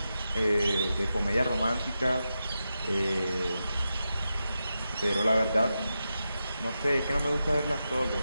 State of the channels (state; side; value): inverted; both; correlation -0.89